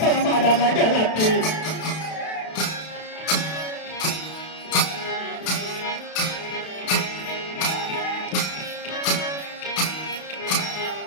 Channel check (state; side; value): late; right; 32 ms